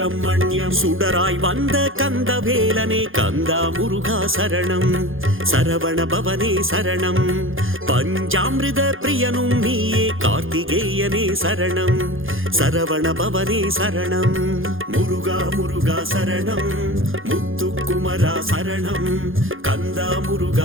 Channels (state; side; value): late; left; 0.59 ms